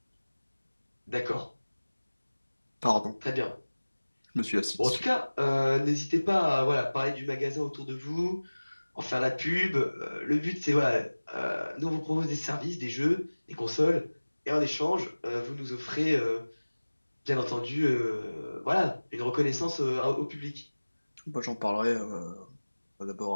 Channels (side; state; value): both; inverted; correlation -1.00